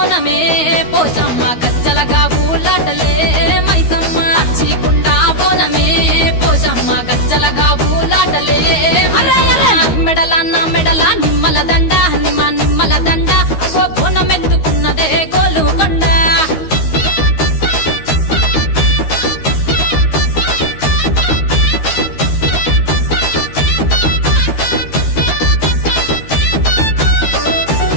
పోషమ్మ గజ్జలగా ఊలాటలే మైసమ్మ పచ్చి కుండా బోనమే పోషమ్మ గజ్జలగా ఊలాటలే అరే అరే మెడల నా మెడల నిమ్మల దండ నిమ్మల దండ అగో బోనమెత్తుకున్నదే గోలుకొండ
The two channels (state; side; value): late; right; 13 ms